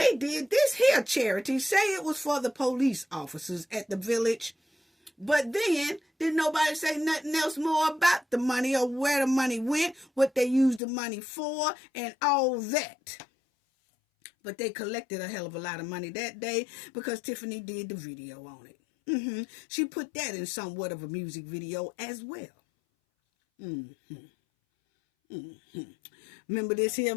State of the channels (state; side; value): drops out; right; at 10.8 s